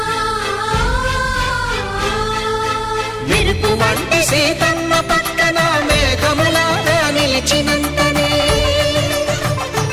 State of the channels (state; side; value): identical; both; correlation 1.00